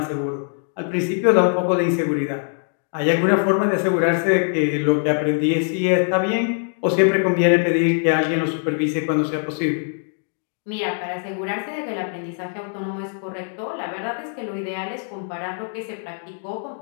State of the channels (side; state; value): right; silent; 64 dB below the other